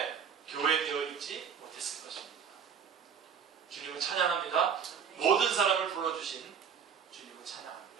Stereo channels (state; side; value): quieter; left; 7.1 dB